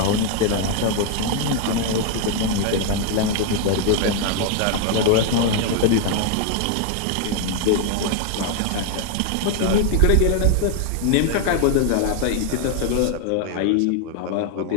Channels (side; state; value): both; different; correlation 0.00